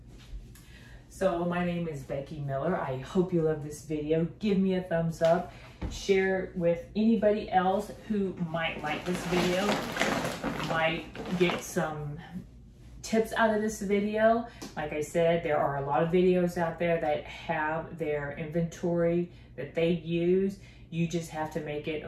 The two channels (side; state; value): both; identical; correlation 1.00